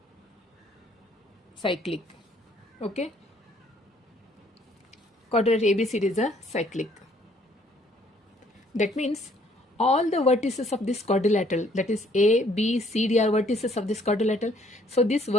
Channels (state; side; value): normal; both; correlation 0.63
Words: Cyclic. Okay? Quadrilateral ABCD is a cyclic. That means all the vertices of this quadrilateral, that is A, B, C, D are vertices of this quadrilateral. So these